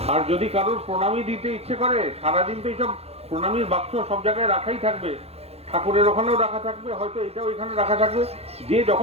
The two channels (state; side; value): late; left; 0.30 ms